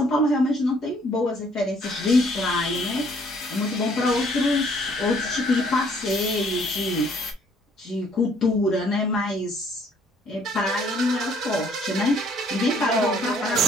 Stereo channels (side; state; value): both; normal; correlation 0.62